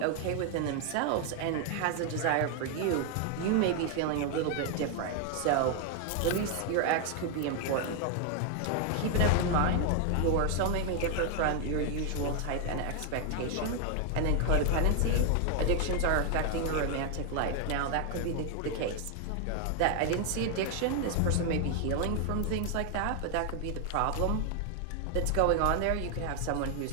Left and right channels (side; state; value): both; different; correlation 0.00